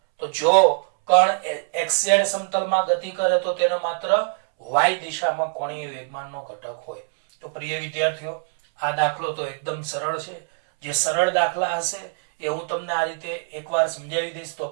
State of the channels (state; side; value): silent; left; 63 dB below the other